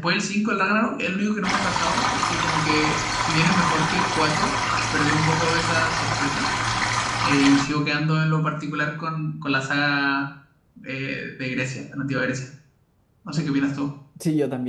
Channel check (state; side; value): identical; both; correlation 1.00